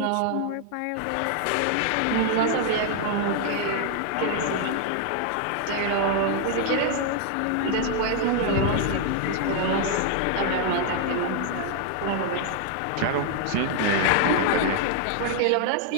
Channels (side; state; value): both; different; correlation 0.00